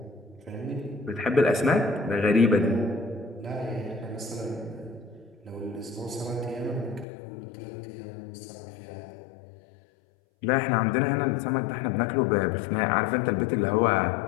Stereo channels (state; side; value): drops out; right; at 7.1 s